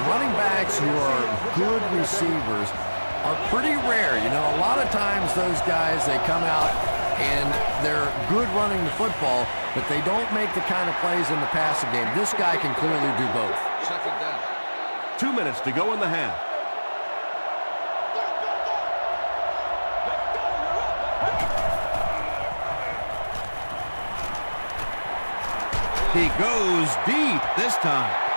running backs who are good receivers are pretty rare. You know, a lot of times those guys, they come out and they're good running the football, but they don't make the kind of plays in the passing game. This guy can clearly do both. 2 minutes to go in the half. He goes deep this time.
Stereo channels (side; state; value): both; inverted; correlation -1.00